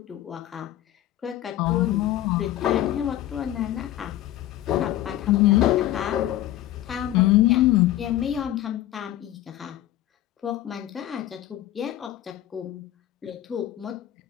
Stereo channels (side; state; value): right; quieter; 13.7 dB